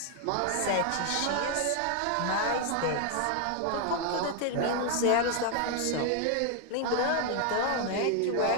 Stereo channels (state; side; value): different; both; correlation 0.00